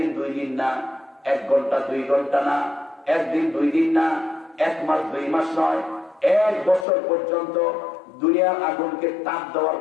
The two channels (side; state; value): right; drops out; at 6.9 s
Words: 2 দিন না, 1 ঘন্টা 2 ঘন্টা না, 1 দিন 2 দিন না, 1 মাস 2 মাস নয়, 1 বছর পর্যন্ত দুনিয়ার আগুনকে তাপ দেওয়ার